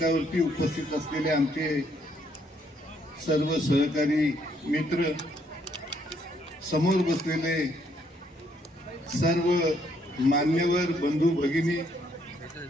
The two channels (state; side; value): normal; both; correlation 0.70